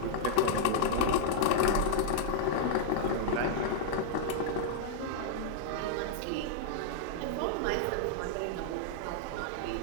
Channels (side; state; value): both; different; correlation -0.01